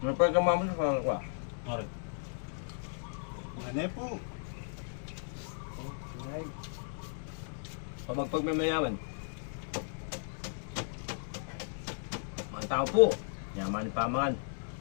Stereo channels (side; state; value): right; silent; digital silence